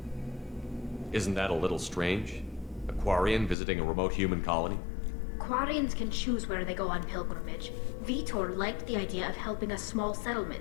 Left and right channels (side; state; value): right; drops out; at 3.6 s